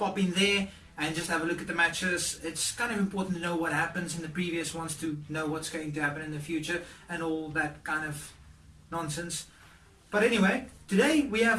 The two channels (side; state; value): both; identical; correlation 1.00